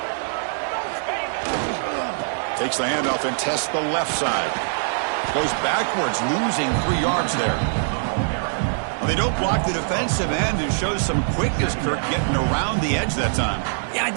Takes the handoff and tests the left side. Goes backwards, losing 3 yards there. They don't block the defensive end and shows some quickness, Kirk, getting around the edge that time. Yeah,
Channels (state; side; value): silent; left; digital silence